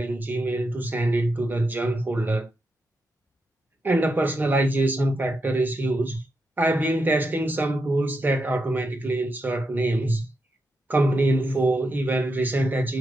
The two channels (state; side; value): normal; both; correlation 0.85